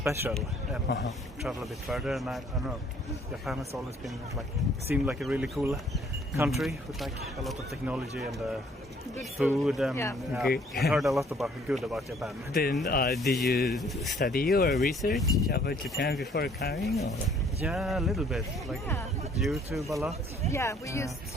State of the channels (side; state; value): both; normal; correlation 0.60